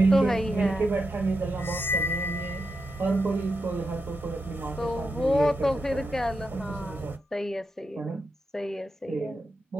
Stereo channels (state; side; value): normal; both; correlation 0.87